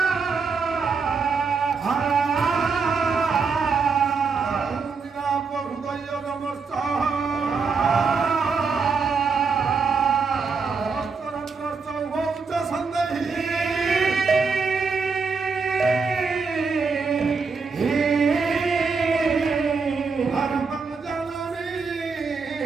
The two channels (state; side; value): quieter; left; 5.0 dB